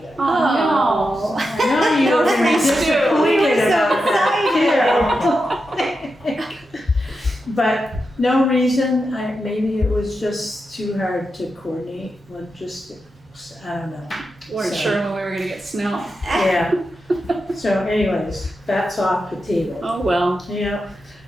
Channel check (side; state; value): both; normal; correlation 0.88